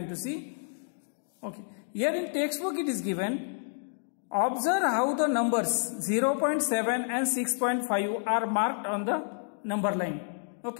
to see. Okay, here in textbook it is given. Observe how the numbers 0.7 and 6.5 are marked on the number line.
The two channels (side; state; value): right; silent; digital silence